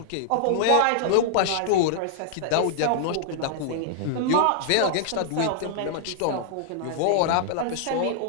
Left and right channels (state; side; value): different; both; correlation -0.01